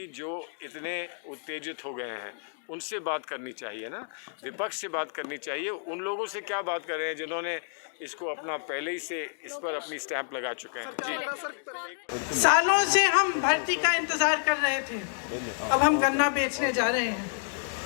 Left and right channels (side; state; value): right; silent; digital silence